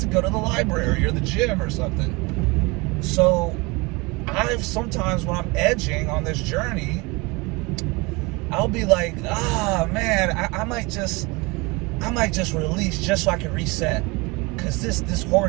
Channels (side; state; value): left; quieter; 25.9 dB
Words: go to the library or the gym or something. So I've sometimes, when I'm edging on this journey, I'll be like, man, I might just release just so I can reset, because this